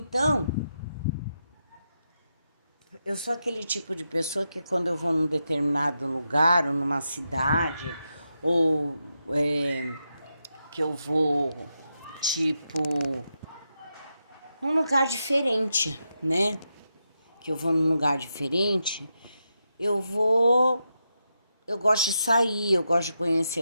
eu sou aquele tipo de pessoa que quando eu vou num determinado lugar, ou numa cidade, ou que eu vou, tipo, num lugar diferente, né? Que eu vou num lugar diferente, eu gosto de sair, eu gosto de conhecer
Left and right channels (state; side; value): inverted; both; correlation -0.86